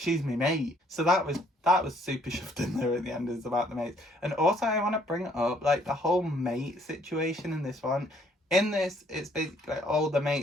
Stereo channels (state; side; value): normal; both; correlation 0.64